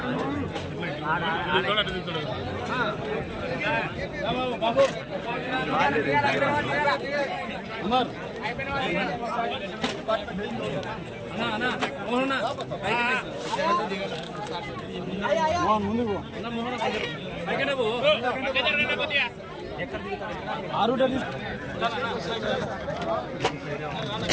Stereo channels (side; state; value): both; identical; correlation 1.00